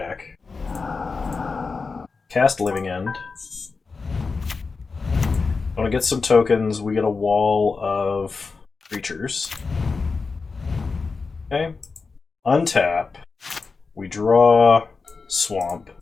Cast Living End. Want to get some tokens, we get a wall of creatures. Okay. Untap. We draw Swamp.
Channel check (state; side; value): quieter; right; 4.5 dB